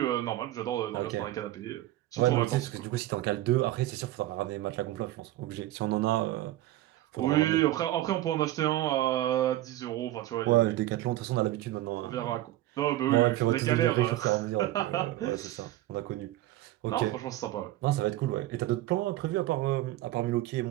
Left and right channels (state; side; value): quieter; left; 15.3 dB